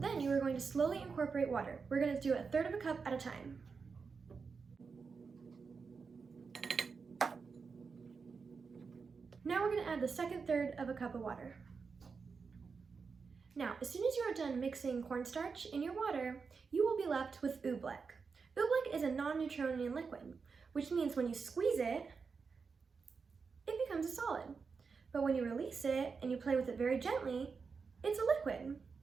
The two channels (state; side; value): quieter; left; 5.2 dB